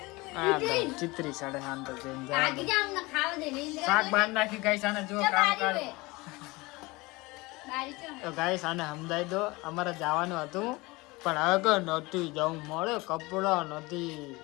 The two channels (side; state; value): right; quieter; 23.1 dB